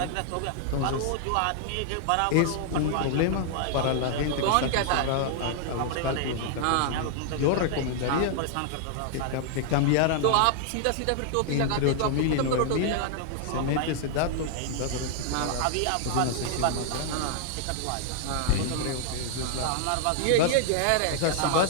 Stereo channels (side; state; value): both; different; correlation -0.01